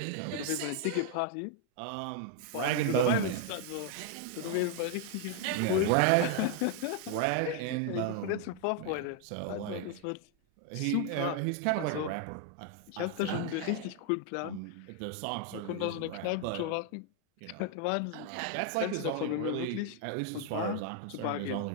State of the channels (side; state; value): both; different; correlation 0.00